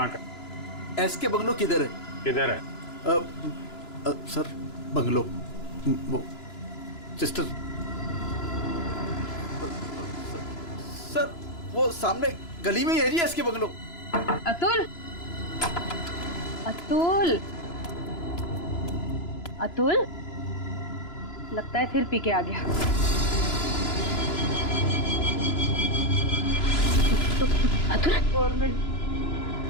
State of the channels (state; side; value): late; right; 2.9 ms